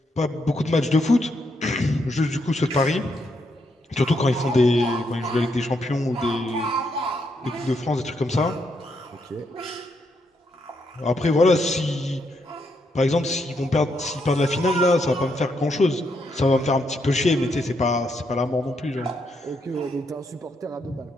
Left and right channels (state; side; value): normal; both; correlation 0.78